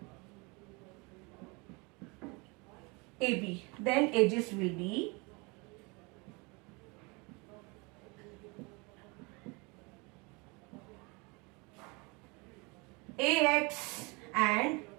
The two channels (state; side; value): quieter; left; 28.3 dB